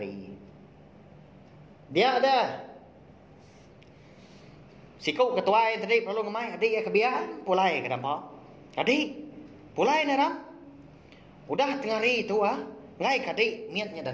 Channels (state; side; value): identical; both; correlation 1.00